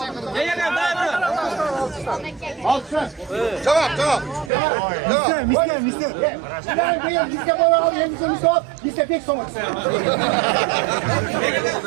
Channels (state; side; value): drops out; left; at 4.5 s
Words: Tamam. Mister. Ben mister bana al, mister pek soğuk.